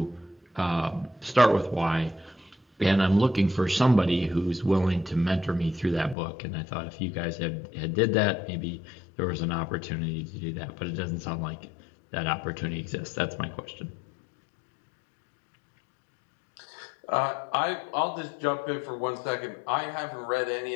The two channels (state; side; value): drops out; right; at 6.2 s